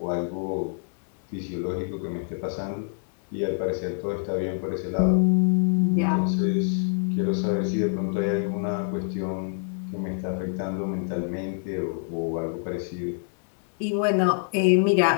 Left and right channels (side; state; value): right; silent; digital silence